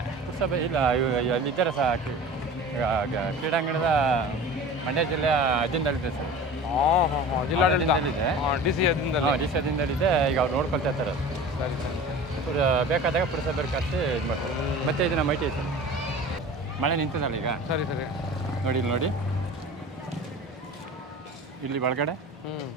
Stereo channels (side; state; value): both; normal; correlation 0.38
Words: ಪುರಸಭೆ ಇಲ್ಲ, ಅಲ್ಲಿದ್ದಾರೆ ಸಹ. ಕ್ರೀಡಾಂಗಣದ ಮಂಡ್ಯ ಜಿಲ್ಲೆಯ ಅಧೀನದಲ್ಲಿದೆ ಸರ್. ಜಿಲ್ಲಾಡಳಿತದಲ್ಲಿದೆ, ಡಿ ಸಿ ಅಧೀನದಲ್ಲಿದೆ. ಈಗ ಅವ್ರು ನೋಡ್ಕೊಳ್ತಾ ಇರ್ತಾರೆ. ಸರಿ, ಬೇಕಾದಾಗ ಪುರಸಭೆ ಕರೆಸಿ ಇದು ಮಾಡ್ತಾರೆ. ಮತ್ತೆ ಇದನ್ನ ಮೈಟಿ ಸರ್, ಮಳೆ ನಿಂತದಲ್ಲ ಈಗ. ಸರಿ ಸರಿ, ನೋಡಿ ಇಲ್ಲಿ ನೋಡಿ, ಇಲ್ಲಿ ಒಳಗಡೆ